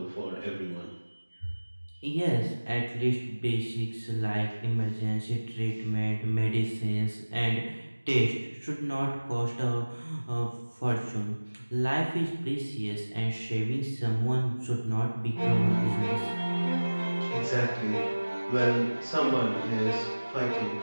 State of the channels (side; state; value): both; inverted; correlation -1.00